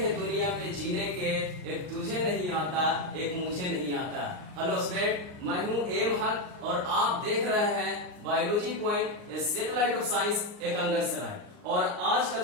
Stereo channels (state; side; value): late; left; 39 ms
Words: दुनिया में जीने के, एक तुझे नहीं आता, एक मुझे नहीं आता। हेलो स्टूडेंट, मैं हूं एम हक और आप देख रहे हैं biology point, satellite of science Ekangar Sarai. और आज का